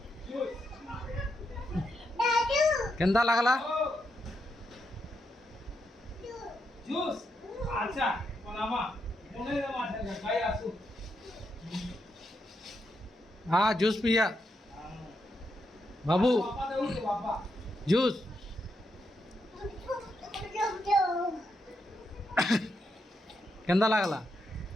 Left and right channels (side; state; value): both; normal; correlation 0.82